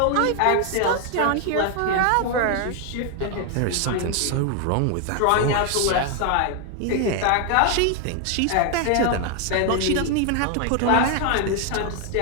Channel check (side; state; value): both; different; correlation 0.00